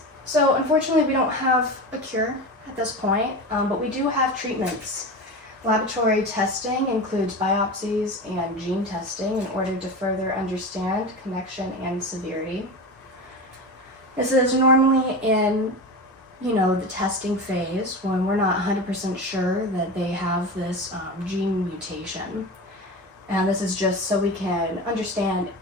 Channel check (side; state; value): both; normal; correlation 0.27